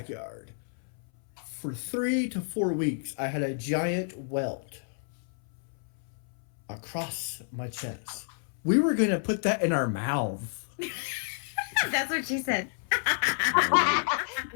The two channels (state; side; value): silent; right; 58 dB below the other